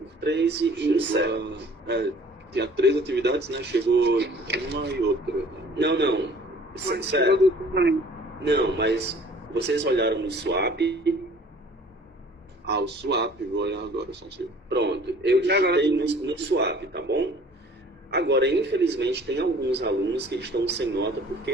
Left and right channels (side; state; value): both; normal; correlation 0.51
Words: 3 e encerra. Tinha 3 atividades, né? Chegou uma e outra. Não. Sério. Não, mas vocês olharam no swap. O swap, vou olhar agora, só um segundo. Pronto, eu digitei no swap, tá bom? Agora, infelizmente, tem alguns alunos que estão sem nota